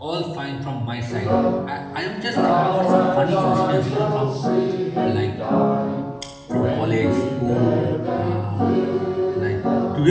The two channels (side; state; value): both; identical; correlation 1.00